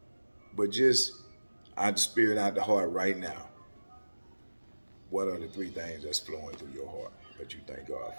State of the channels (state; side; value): inverted; both; correlation -1.00